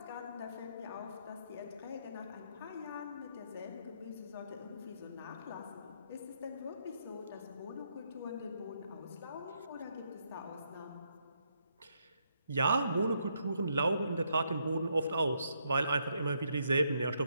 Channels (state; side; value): inverted; both; correlation -0.76